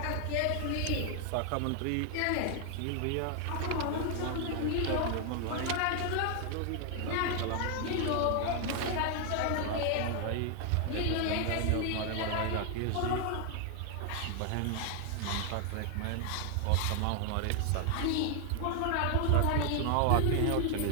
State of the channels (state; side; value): different; both; correlation 0.00